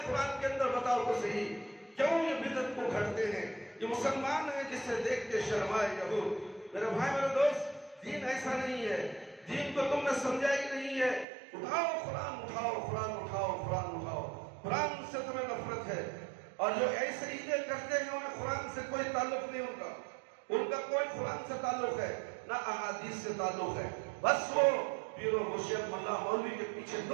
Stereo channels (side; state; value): left; drops out; at 11.2 s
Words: قرآن کے اندر؟ بتاؤ تو صحیح، کیوں یہ بدعت کو گھڑتے ہیں؟ یہ مسلمان ہیں جس سے دیکھ کے شرمائے یہود۔ میرے بھائی میرے دوست، دین ایسا نہیں ہے، دین کو تم نے سمجھا ہی نہیں ہے۔ اٹھاؤ قرآن، اٹھاؤ قرآن، اٹھاؤ قرآن، اٹھاؤ قرآن سے تمہیں نفرت ہے، اور جو ایسے عیدیں کرتے ہیں انہیں قرآن سے کوئی تعلق نہیں، ان کا کوئی قرآن سے تعلق ہے نہ احادیث سے تعلق ہے، بس وہ پیر و مرشد ملا مولوی کے پیچھے